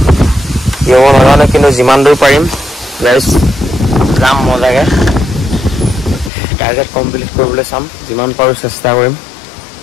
কি হ'ব নাজানো কিন্তু যিমান দূৰ পাৰিম গাইছ যাম মজাকৈ টাৰ্গেট কমপ্লিট কৰিবলৈ চাম যিমান পাৰোঁ চেষ্টা কৰিম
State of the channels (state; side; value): drops out; right; at 6.3 s